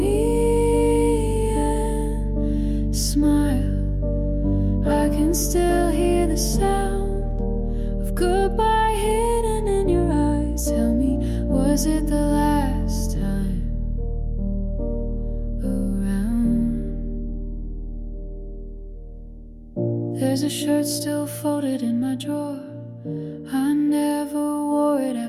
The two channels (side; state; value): both; identical; correlation 1.00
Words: and smiled, I can still hear the sound of goodbye hidden in your eyes. Tell me, was it the last time around? There's a shirt still folded in my drawer. I never wore it